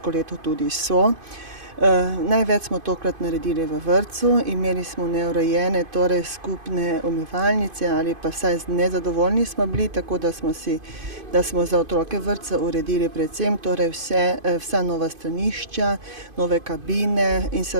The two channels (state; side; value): late; left; 2.5 ms